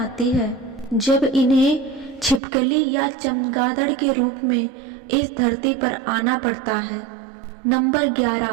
है जब इन्हें छिपकली या चमगादड़ के रूप में इस धरती पर आना पड़ता है। नंबर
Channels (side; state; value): left; drops out; at 2.4 s